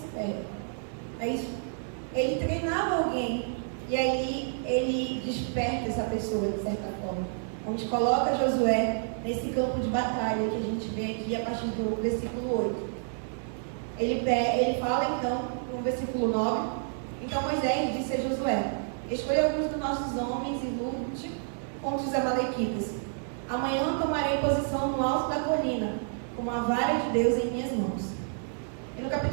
perde. É isso. Ele treinava alguém. E aí ele desperta essa pessoa, de certa forma. Onde coloca Josué nesse campo de batalha que a gente vê aqui a partir do versículo 8. Ele fala então, no versículo 9, então Moisés disse a Josué: escolha alguns dos nossos homens e lute contra os amalequitas. Amanhã tomarei posição no alto da colina, com a vara de Deus em minhas mãos. E no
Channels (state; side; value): silent; left; digital silence